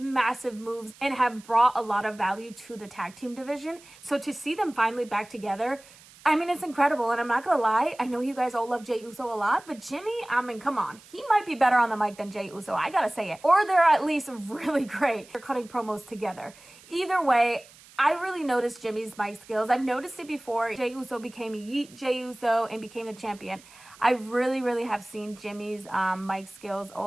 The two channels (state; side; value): noise; right; hiss, 23 dB below the sound